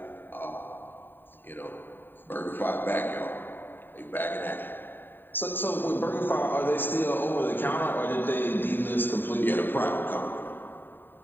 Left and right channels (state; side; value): late; right; 0.094 ms